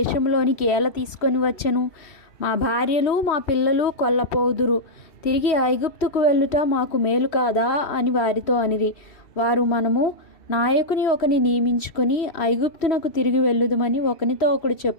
ఏల తీసుకొని వచ్చెను. మా భార్యలు మా పిల్లలు కొల్లపోదురు. తిరిగి ఐగుప్తుకు వెళ్ళుట మాకు మేలు కాదా అని వారితో అనిరి. వారు, మనము నాయకుని ఒకని నియమించుకొని ఐగుప్తునకు తిరిగి వెళ్ళుదుమని ఒకనితో ఒకడు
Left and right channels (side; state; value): right; late; 3.0 ms